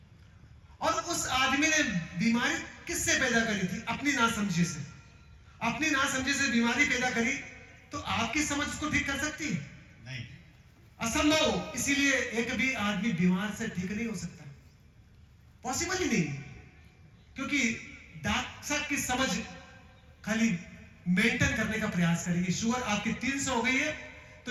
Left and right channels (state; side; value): identical; both; correlation 1.00